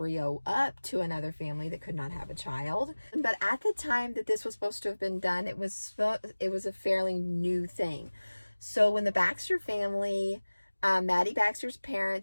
up to another family that could not have a child. But at the time that this was supposed to have been done, it was a fairly new thing. So when the Baxter family, Maddie Baxter's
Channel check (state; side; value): inverted; both; correlation -1.00